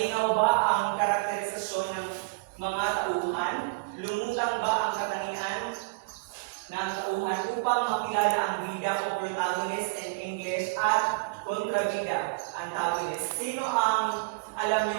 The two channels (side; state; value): left; quieter; 29.9 dB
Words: ba ang karakterisasyon ng mga tauhan? Lumutang ba ang katangian ng tauhan upang makilala ang bida o protagonist in English at kontrabida, antagonist? Sino ang alam